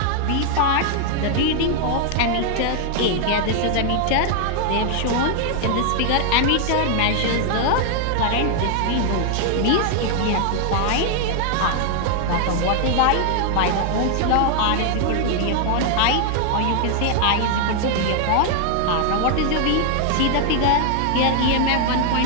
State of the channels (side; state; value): both; different; correlation 0.00